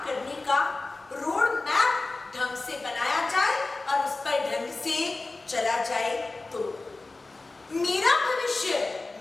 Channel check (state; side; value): quieter; right; 3.4 dB